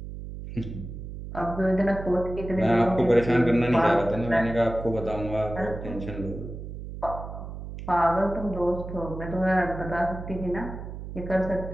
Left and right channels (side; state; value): right; noise; hum, 9 dB below the sound